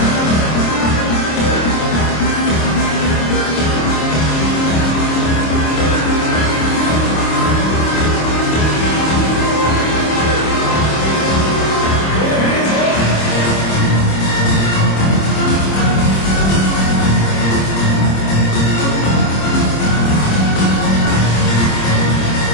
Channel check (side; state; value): right; late; 26 ms